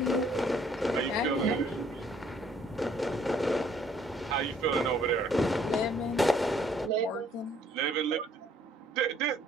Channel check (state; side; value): normal; both; correlation 0.63